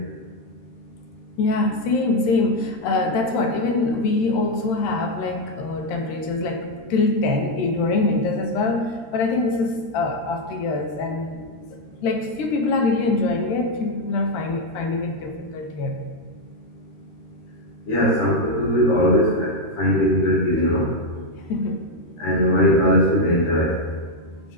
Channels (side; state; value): right; late; 13 ms